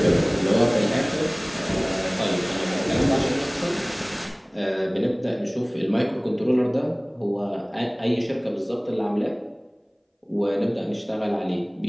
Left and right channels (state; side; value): identical; both; correlation 1.00